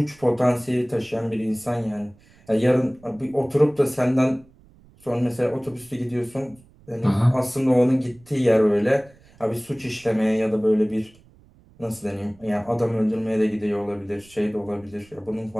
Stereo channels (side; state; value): right; noise; rumble, 28 dB below the sound